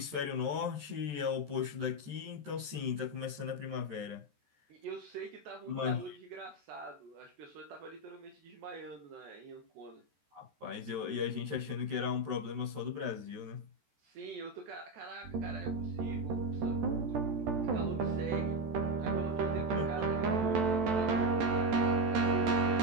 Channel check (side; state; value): left; late; 14 ms